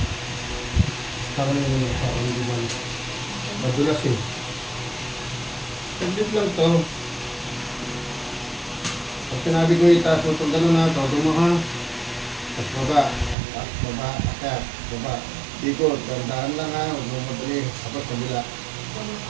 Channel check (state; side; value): drops out; left; at 13.4 s